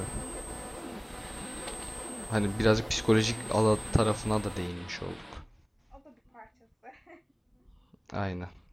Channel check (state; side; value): identical; both; correlation 1.00